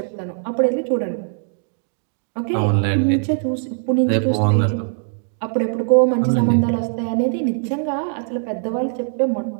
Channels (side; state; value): left; silent; digital silence